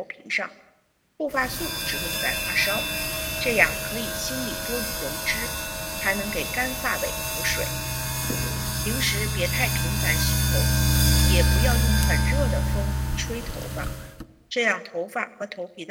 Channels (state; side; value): identical; both; correlation 1.00